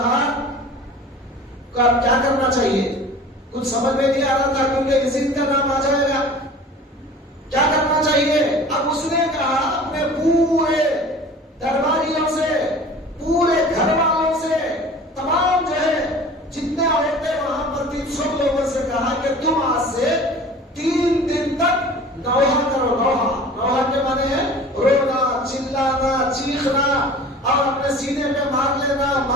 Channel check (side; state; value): both; normal; correlation 0.42